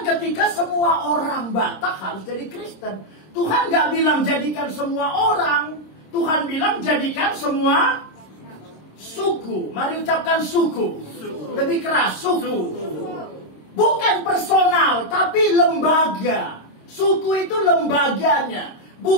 ketika semua orang Batak harus jadi Kristen. Tuhan nggak bilang jadikan semua orang. Tuhan bilang jadikan semua suku. Mari ucapkan suku. Lebih keras, suku. Bukan personal, tapi lembaga. Suku itu lembaganya.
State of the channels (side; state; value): right; late; 26 ms